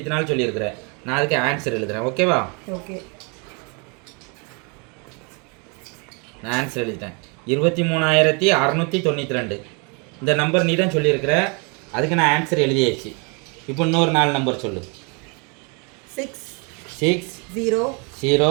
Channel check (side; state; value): left; quieter; 33.5 dB